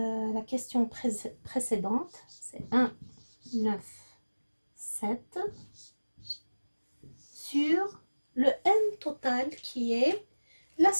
question précédente, c'est 1, 9, 7 sur le N total qui est la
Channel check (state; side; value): inverted; both; correlation -1.00